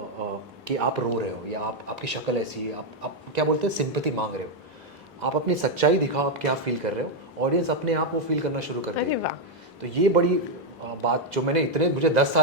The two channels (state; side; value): normal; both; correlation 0.02